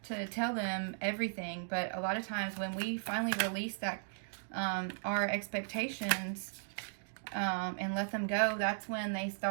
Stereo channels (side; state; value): left; silent; digital silence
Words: tell them everything, but a lot of times when we finally release that our expectations and let them go, that's when they